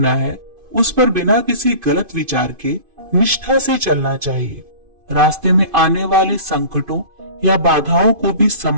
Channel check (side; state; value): left; late; 2.5 ms